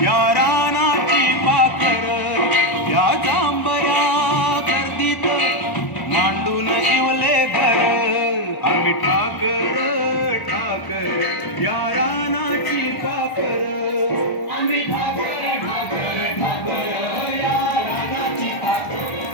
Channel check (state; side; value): late; right; 1.1 ms